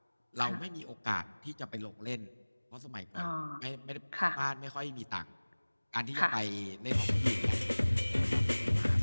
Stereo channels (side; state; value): both; inverted; correlation -1.00